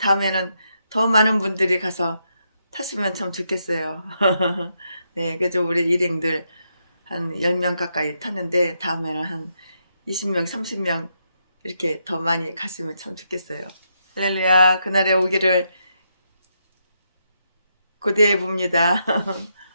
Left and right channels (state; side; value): inverted; both; correlation -0.80